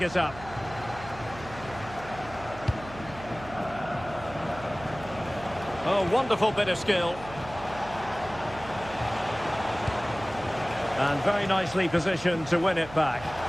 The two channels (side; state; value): right; noise; hum, 15 dB below the sound